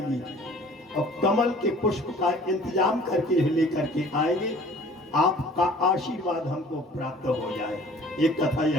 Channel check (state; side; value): normal; both; correlation 0.50